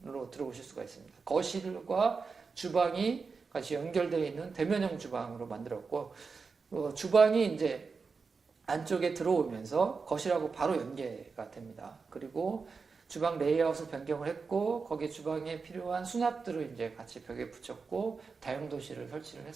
들어오실 수가 있습니다. 거실과 주방이 같이 연결되어 있는 대면형 주방으로 만들었고, 주방이 이제 안쪽에 들어오면서 거실하고 바로 연계가 됩니다. 그리고 주방 레이아웃을 변경을 했고 거기에 주방에 필요한 수납들을 이제 같이 벽에 붙였고 다용도실을 설치를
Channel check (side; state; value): left; quieter; 4.9 dB